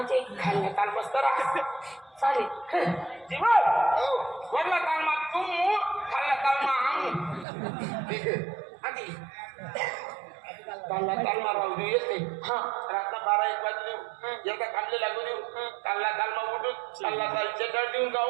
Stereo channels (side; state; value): left; drops out; at 7.5 s